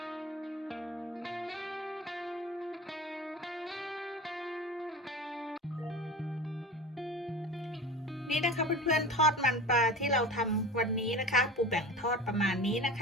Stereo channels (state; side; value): normal; both; correlation 0.34